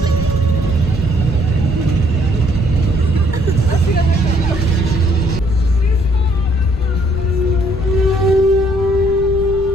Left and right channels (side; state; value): left; noise; rumble, 9 dB below the sound